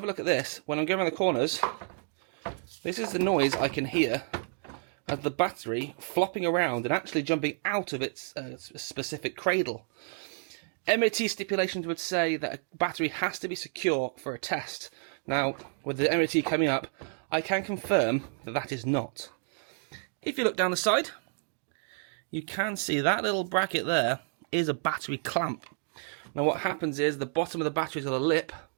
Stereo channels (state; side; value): silent; left; 58 dB below the other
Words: a look at this, when I'm going around the corners, this is the noise I can hear of the battery flopping around and actually jumping out of its specific cradle. MOT stipulations would say that a battery has to be secure for a test. Now, with the MOT coming up, I can confirm that that is not. If you look down the side, you can see that little bracket there is a battery clamp. Now what happens is the bottom of the battery's got a lip,